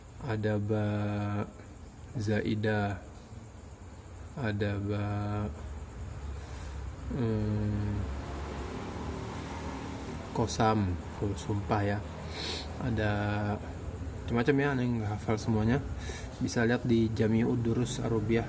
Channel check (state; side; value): identical; both; correlation 1.00